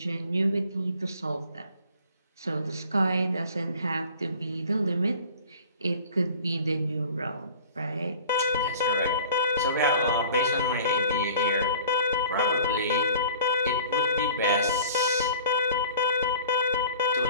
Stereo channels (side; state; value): both; inverted; correlation -0.45